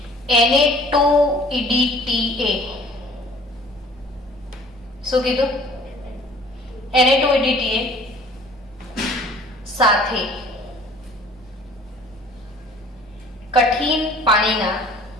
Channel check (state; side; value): normal; both; correlation 0.51